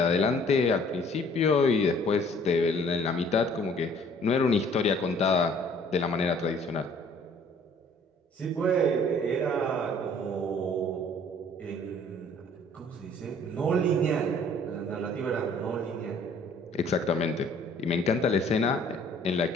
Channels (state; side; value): normal; both; correlation 0.56